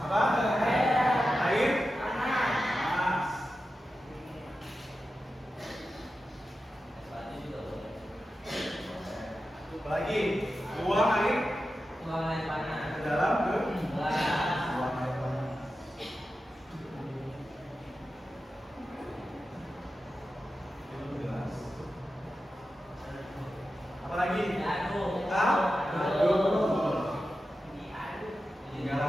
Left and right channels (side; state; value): both; normal; correlation 0.92